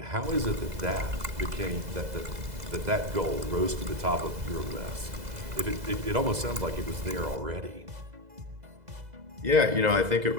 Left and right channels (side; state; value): left; late; 2.0 ms